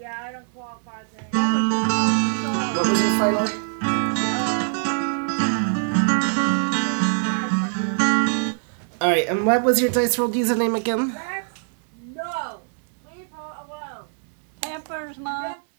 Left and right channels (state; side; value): silent; left; digital silence